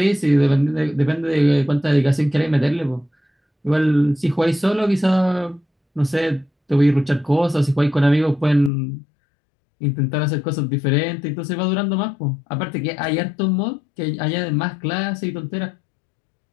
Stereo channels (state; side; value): drops out; right; at 8.7 s